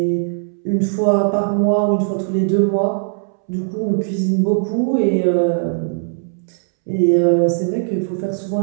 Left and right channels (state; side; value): silent; left; 67 dB below the other